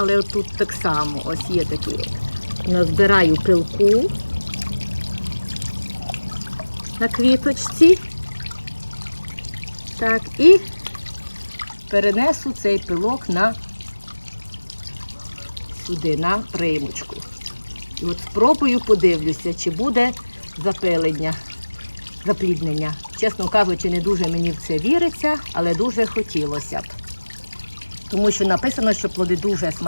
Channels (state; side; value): inverted; both; correlation -1.00